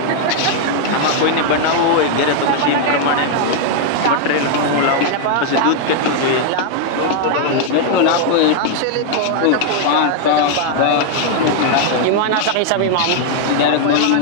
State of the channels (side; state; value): both; different; correlation 0.00